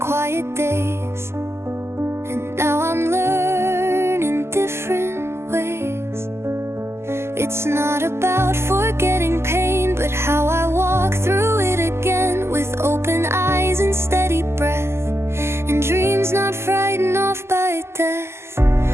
quiet days, and now I'm learning different ways. It's not about forgetting pain, but how I walk through it again, with open eyes and steady breath, and dreams not frightened off by death.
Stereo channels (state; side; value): late; left; 0.12 ms